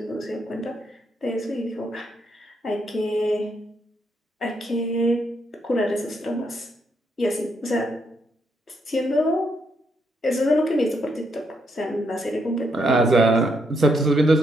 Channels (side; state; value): both; normal; correlation 0.77